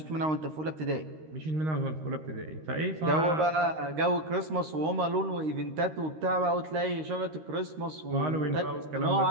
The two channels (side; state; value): left; late; 13 ms